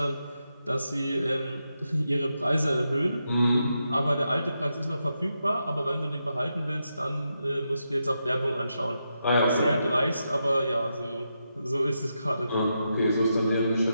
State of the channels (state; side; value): inverted; both; correlation -0.85